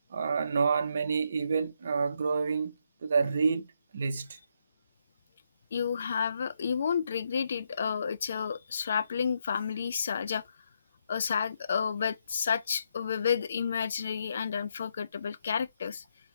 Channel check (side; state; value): both; inverted; correlation -0.78